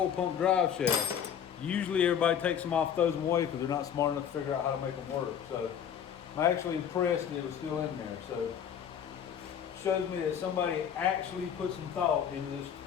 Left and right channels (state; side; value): quieter; right; 8.6 dB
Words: pump drive shaft. Usually everybody takes them off, throws them away because they're not smart enough to figure out how to make them work. So I'm actually impressed that it was still in there. So it shows me that somebody actually put some thought into this